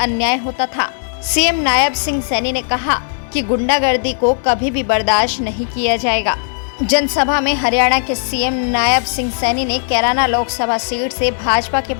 अन्याय होता था। सीएम नायब सिंह सैनी ने कहा कि गुंडागर्दी को कभी भी बर्दाश्त नहीं किया जाएगा। जनसभा में हरियाणा के सीएम नायब सिंह सैनी ने कैराना लोकसभा सीट से भाजपा के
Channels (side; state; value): right; silent; digital silence